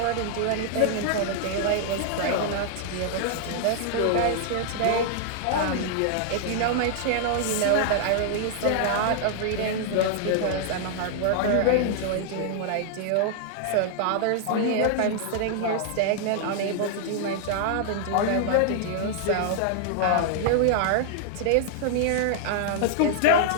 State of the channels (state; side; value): different; both; correlation -0.01